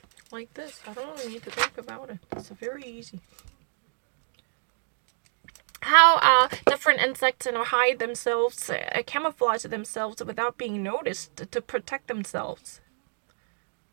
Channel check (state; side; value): silent; left; digital silence